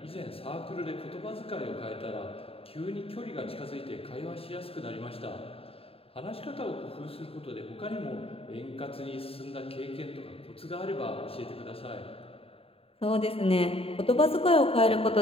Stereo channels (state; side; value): late; right; 0.27 ms